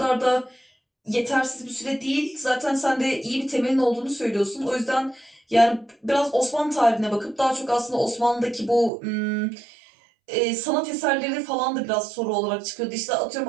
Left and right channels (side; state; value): left; drops out; at 8.9 s